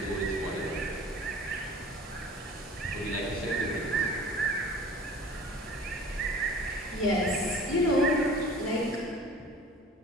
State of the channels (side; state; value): both; normal; correlation 0.43